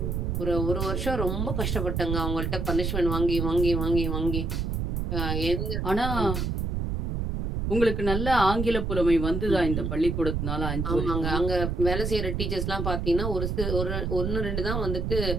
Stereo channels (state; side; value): noise; right; rumble, 1 dB below the sound